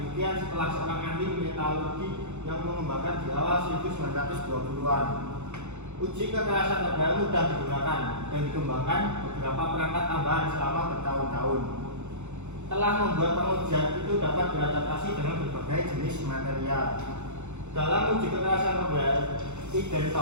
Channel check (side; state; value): left; late; 0.83 ms